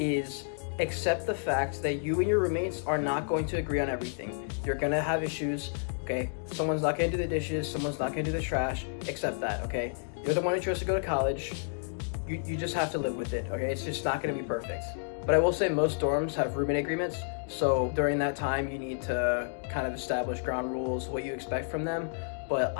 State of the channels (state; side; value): silent; right; digital silence